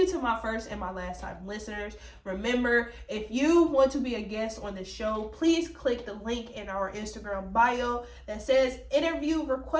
to my first and my last time listeners. Remember, if you want to be a guest on the show, please click the link in our Instagram bio that says interview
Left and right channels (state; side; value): identical; both; correlation 1.00